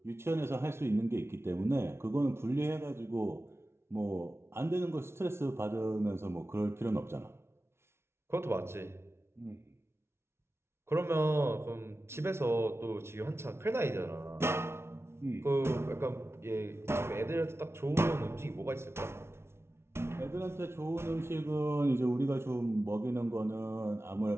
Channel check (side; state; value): left; late; 0.12 ms